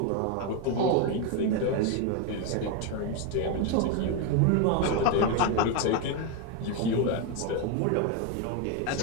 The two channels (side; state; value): both; different; correlation 0.02